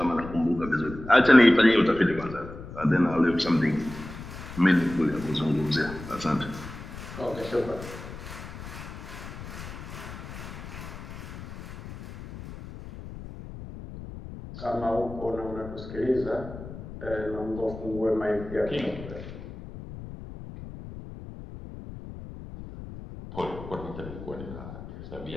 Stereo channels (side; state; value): left; noise; rumble, 12 dB below the sound